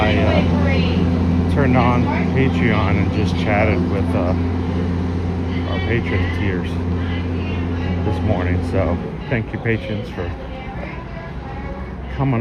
turned on Patreon and just chatted with our patron tiers this morning. So thank you, patrons, for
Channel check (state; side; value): identical; both; correlation 1.00